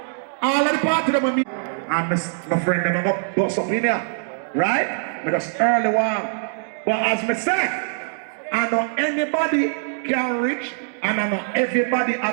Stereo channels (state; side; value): silent; left; digital silence